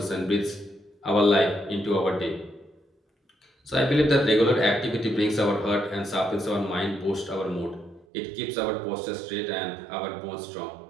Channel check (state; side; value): drops out; left; at 8.1 s